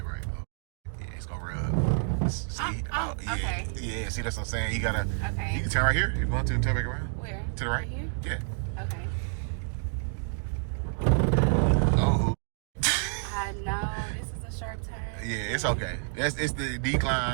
right. Oh, yeah, it's gonna rub. See? Yeah. Okay. Yeah, see, that's what I'm saying. You gotta. Okay. You can turn right here. You want to turn back around? Where? To the right? Right here? Yeah. Okay. Oh. I know. This is a sharp turn. Yeah, it's okay. It's the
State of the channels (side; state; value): left; silent; digital silence